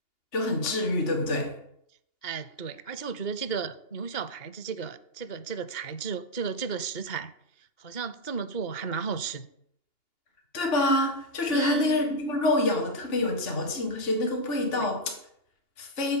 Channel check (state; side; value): late; right; 2.8 ms